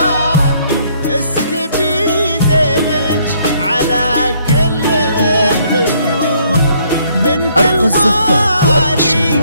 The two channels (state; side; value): inverted; both; correlation -0.66